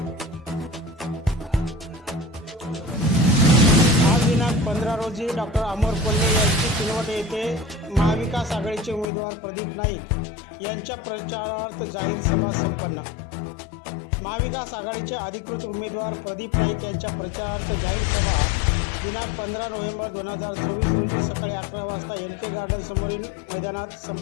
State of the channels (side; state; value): right; drops out; at 9.1 s